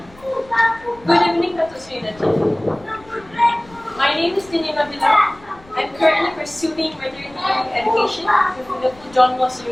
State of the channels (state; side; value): noise; left; rumble, 24 dB below the sound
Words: good evening, Dato Sri Najib. My name is Nabila. I'm currently pursuing veterinary education with Liverpool John Moss